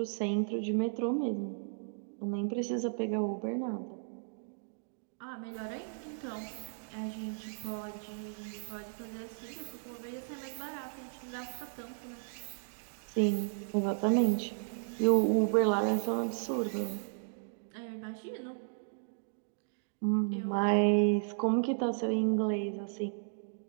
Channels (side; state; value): left; silent; digital silence